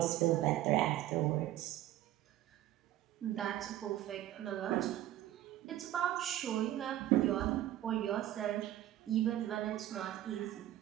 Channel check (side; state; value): left; quieter; 13.5 dB